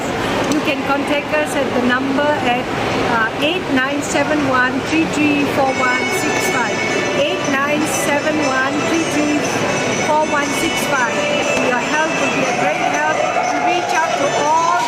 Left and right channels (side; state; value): both; identical; correlation 1.00